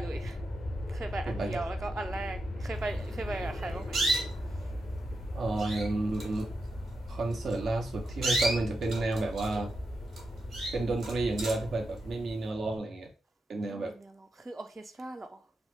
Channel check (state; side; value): normal; both; correlation 0.87